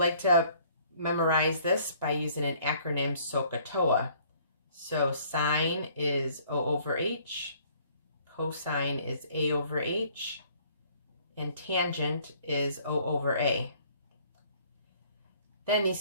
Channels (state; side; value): inverted; both; correlation -0.58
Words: to memorize this by using an acronym SOHCAHTOA. So sine is O over H, cosine is A over H, and tangent is O over A. Then